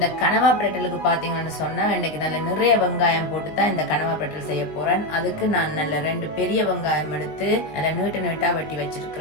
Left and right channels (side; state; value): right; late; 19 ms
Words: கனவா பிரட்டலுக்கு பாத்தீங்கன்னு சொன்னா இன்னைக்கு நல்ல நிறைய வெங்காயம் போட்டு தான் இந்த கனவா பிரட்டல் செய்ய போறேன். அதுக்கு நான் நல்ல 2 பெரிய வெங்காயம் எடுத்து நல்ல நீட்ட நீட்டா வெட்டி